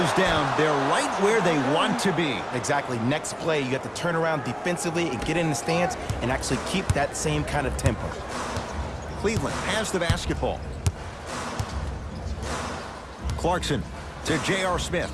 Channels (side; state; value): both; identical; correlation 1.00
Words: down. They're right where they want to be. Exactly. Next play, you have to turn around defensively and get in the stance and actually keep that same kind of tempo. Cleveland has the basketball. Clarkson to J.R. Smith.